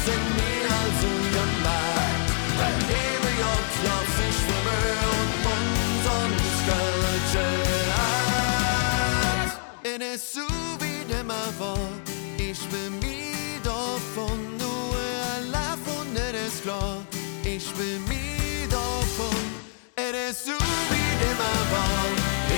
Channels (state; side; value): silent; right; 61 dB below the other